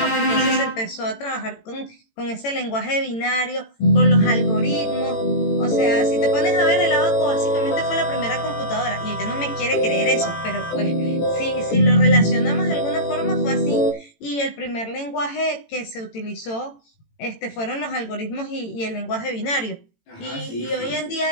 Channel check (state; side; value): late; right; 18 ms